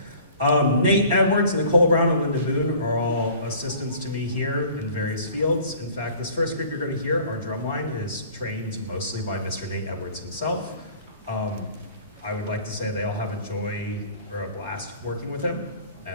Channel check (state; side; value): inverted; both; correlation -0.48